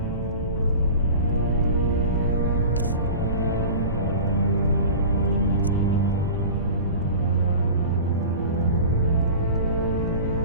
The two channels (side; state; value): both; inverted; correlation -0.36